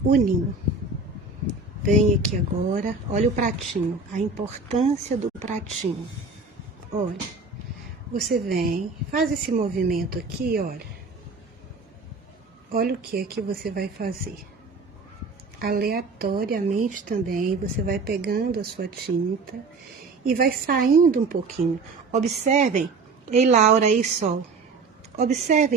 o ninho. Vem aqui agora, olha o pratinho, a importância do pratinho. Olha, você vem, faz esse movimento aqui, olha. Olha o que é que você vai fazer. Aleatoriamente também, você vai pegando a sua tinta e vai saindo um pouquinho. Observem, ei Laura, ei Sol,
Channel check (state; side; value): quieter; left; 3.9 dB